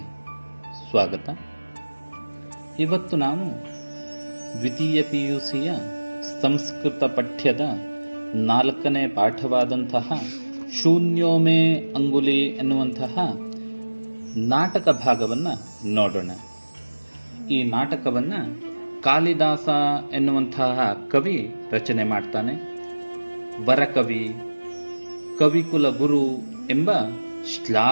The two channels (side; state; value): both; inverted; correlation -1.00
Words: ಸ್ವಾಗತ. ಇವತ್ತು ನಾವು ದ್ವಿತೀಯ PUCಯ ಸಂಸ್ಕೃತ ಪಠ್ಯದ 4ನೇ ಪಾಠವಾದಂತಹ ಶೂನ್ಯೋ ಮೇ ಅಂಗುಲಿ ಎನ್ನುವಂತಹ ನಾಟಕ ಭಾಗವನ್ನು ನೋಡೋಣ. ಈ ನಾಟಕವನ್ನು ಕಾಳಿದಾಸ ಎನ್ನುವಂತಹ ಕವಿ ರಚನೆ ಮಾಡ್ತಾನೆ. ವರಕವಿ, ಕವಿಕುಲ ಗುರು ಎಂಬ